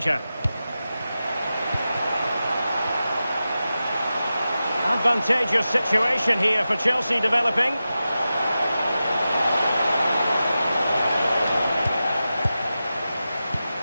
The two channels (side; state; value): both; inverted; correlation -0.93